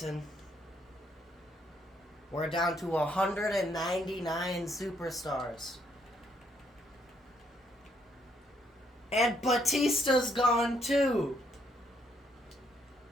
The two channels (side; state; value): both; normal; correlation 0.71